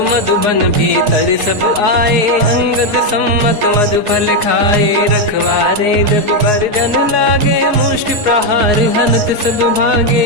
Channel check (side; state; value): left; late; 4.6 ms